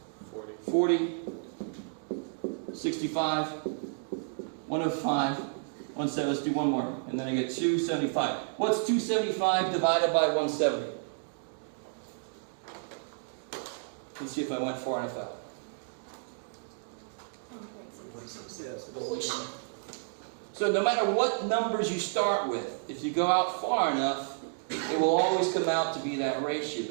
40. 65. 105. 170. Let's do one more. And then I get 275. What's 275 divided by 170? Let's see if I went far enough out. 1.6. So no matter what numbers you start with, if you go out far enough, it will always come out to be that ratio.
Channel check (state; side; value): silent; left; digital silence